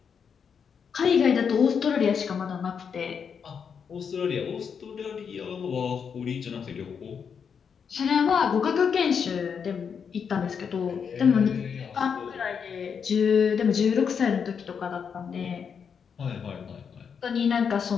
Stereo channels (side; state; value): right; quieter; 6.7 dB